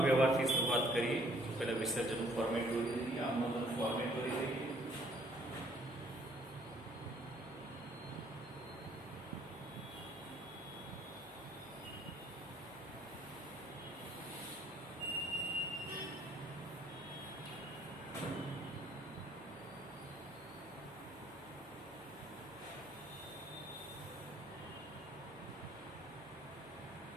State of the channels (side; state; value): left; noise; hum, 25 dB below the sound